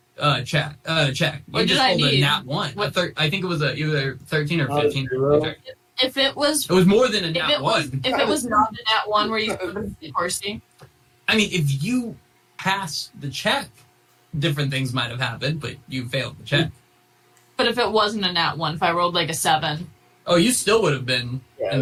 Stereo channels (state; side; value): identical; both; correlation 1.00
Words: check. You What just did I rolled a need? nat one. I think it was either 13 or Not a 15. zero. If it was, It was more than a if nat it was, one. if it was not a nat one where you could be horsey. I mean, if you passed the check, different things might have happened, but you failed the check. But if it wasn't a nat one, if I rolled like a 7, Oh, you still would have been Yeah, in